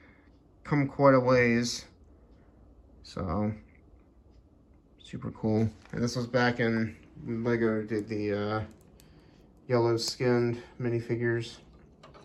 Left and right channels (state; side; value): identical; both; correlation 1.00